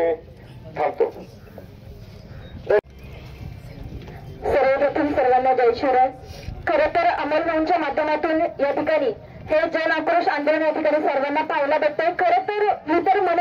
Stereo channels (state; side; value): identical; both; correlation 1.00